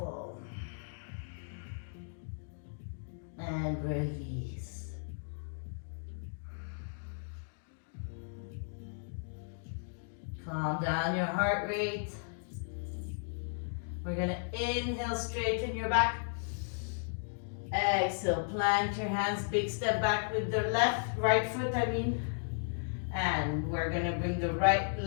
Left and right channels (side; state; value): right; silent; digital silence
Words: And release. Calm down your heart rate. We're gonna inhale, straighten your back. Exhale, plant your hands, big step back with the right foot, And we're gonna bring the